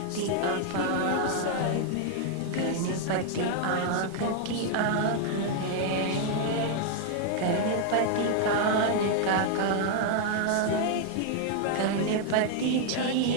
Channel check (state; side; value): different; both; correlation 0.00